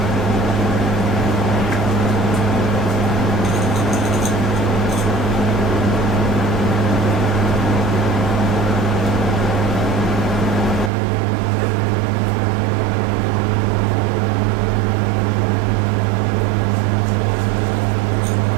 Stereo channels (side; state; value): left; drops out; at 10.9 s